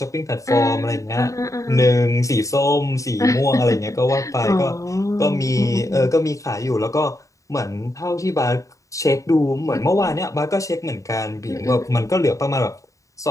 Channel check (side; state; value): right; late; 0.16 ms